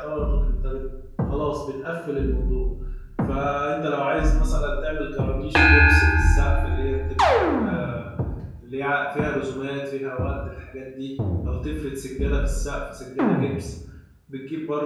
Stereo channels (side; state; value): both; identical; correlation 1.00